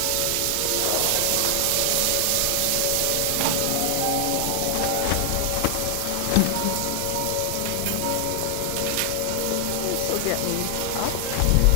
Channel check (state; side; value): different; both; correlation 0.00